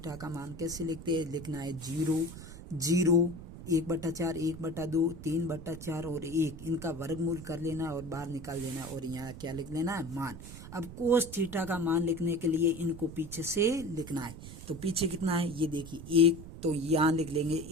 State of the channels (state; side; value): noise; right; rumble, 13 dB below the sound